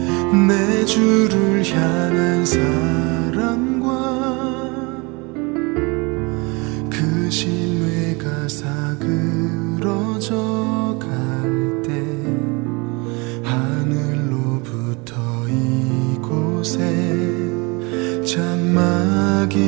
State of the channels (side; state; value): left; quieter; 27.7 dB